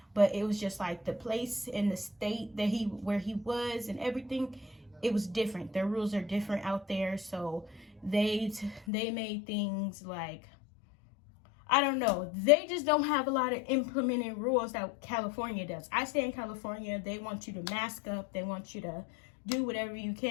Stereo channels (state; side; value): drops out; right; at 8.8 s